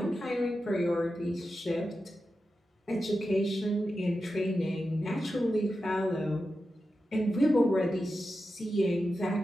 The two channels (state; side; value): normal; both; correlation 0.91